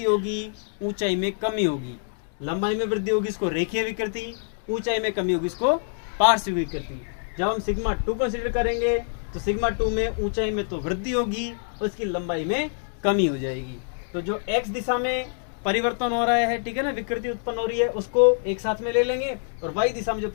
होगी, ऊंचाई में कमी होगी। लंबाई में वृद्धि होगी इसको रेखीय विकृति, ऊंचाई में कमी होगी इसको पार्श्विक विकृति। जब हम सिग्मा 2 कंसिडर करेंगे तो सिग्मा 2 में ऊंचाई में तो वृद्धि होगी, उसकी लंबाई में कमी हो जाएगी। तो जो x दिशा में परिवर्तन हो रहा है, ठीक है ना, विकृति उत्पन्न हो रही है, उसको एक साथ में ले लेंगे, और y दिशा में जो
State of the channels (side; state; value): right; silent; digital silence